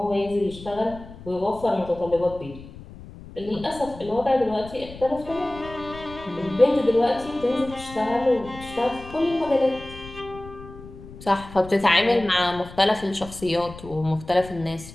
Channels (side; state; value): left; noise; rumble, 16 dB below the sound